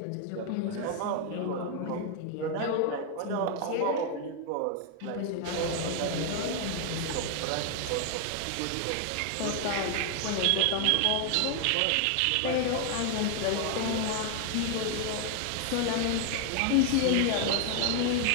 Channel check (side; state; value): both; different; correlation 0.00